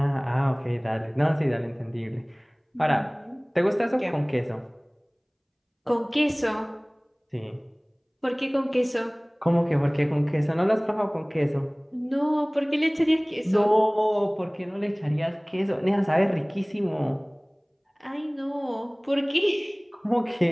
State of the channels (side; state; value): both; identical; correlation 1.00